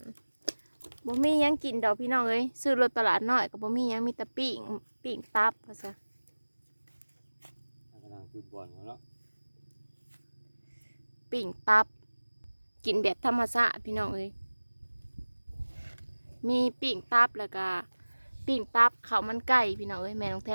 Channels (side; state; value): both; inverted; correlation -1.00